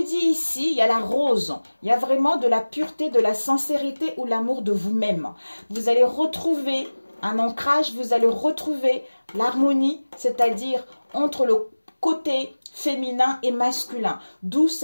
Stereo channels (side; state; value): both; inverted; correlation -1.00